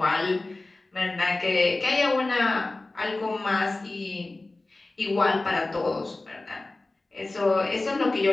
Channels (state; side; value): quieter; right; 3.1 dB